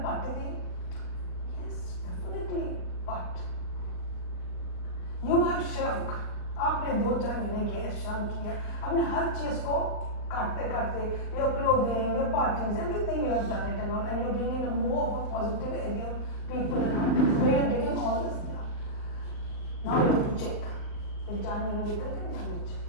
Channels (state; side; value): late; right; 38 ms